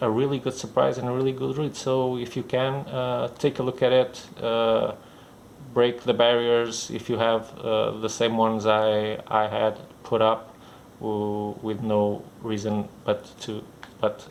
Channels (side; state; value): both; identical; correlation 1.00